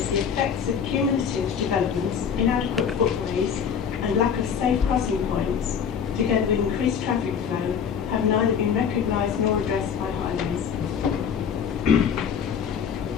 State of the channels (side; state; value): right; quieter; 7.3 dB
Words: the effects of cumulative developments, inadequate footways and lack of safe crossing points, together with increased traffic flow, have neither been recognised nor addressed by Highways.